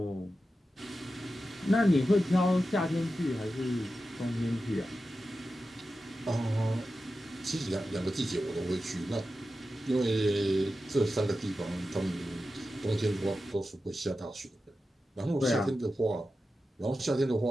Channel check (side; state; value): both; normal; correlation 0.92